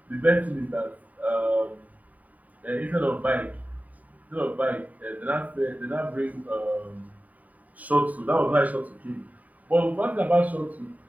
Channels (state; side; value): late; left; 0.073 ms